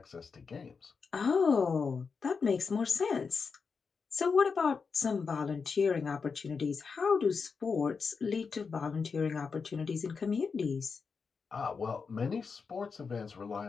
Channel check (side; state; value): right; quieter; 5.3 dB